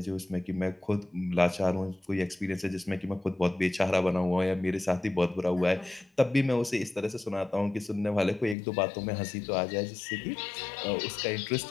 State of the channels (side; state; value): right; drops out; at 8.6 s